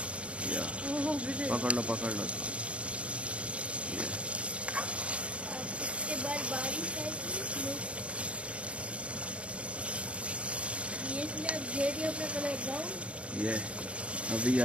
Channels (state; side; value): late; left; 0.061 ms